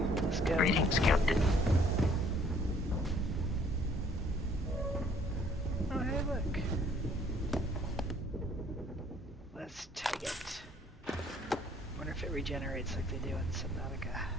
Let's go. Greetings, Captain. Oh, hey, look. Let's take it. Wonder if it regenerates like they do in Subnautica.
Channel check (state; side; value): normal; both; correlation 0.60